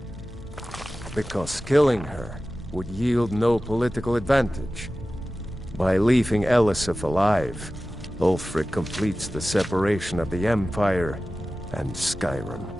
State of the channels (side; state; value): both; normal; correlation 0.96